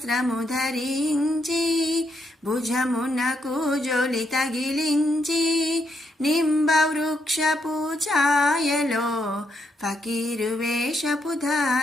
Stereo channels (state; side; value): normal; both; correlation 0.78